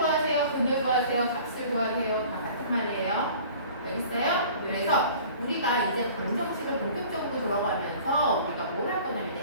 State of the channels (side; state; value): both; inverted; correlation -0.46